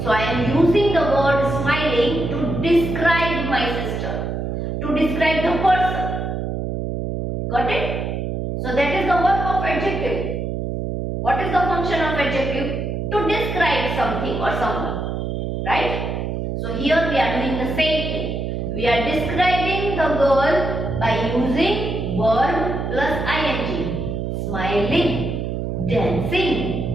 So I am using the word smiling to describe my sister, to describe the person. Got it? So that is the work of adjective. What is the function of adjective? To describe something or someone. Right? So here we are doing the same thing. We are describing the girl by using verb plus ing. Smiling,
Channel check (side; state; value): right; noise; hum, 3 dB below the sound